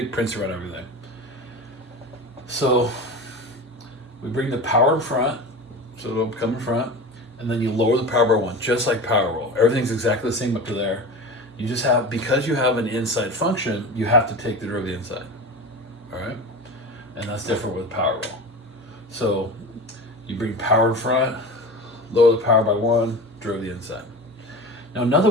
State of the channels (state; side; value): normal; both; correlation 0.30